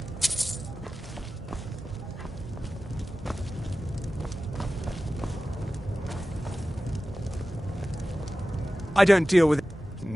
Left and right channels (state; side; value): normal; both; correlation 0.95